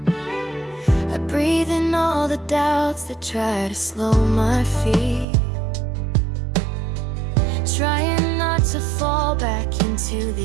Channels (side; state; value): left; drops out; at 5.2 s